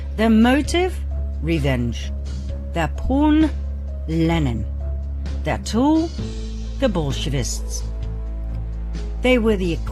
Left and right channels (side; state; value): both; identical; correlation 1.00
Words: Their motive? Revenge. Their pawn? Lenin. Their tool? The Bolshevists. They were the